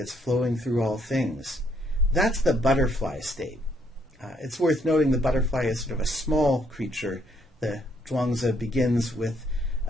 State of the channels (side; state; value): both; normal; correlation 0.70